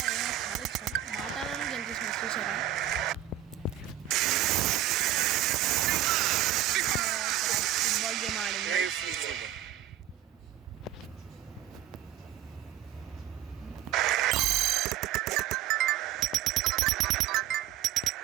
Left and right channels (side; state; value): left; quieter; 12.6 dB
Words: చాలా ఇష్టం. మాట్లాడాలని గెలిచేసిన చూసారా. ఫుట్బాల్ గేమ్ ఆడింది.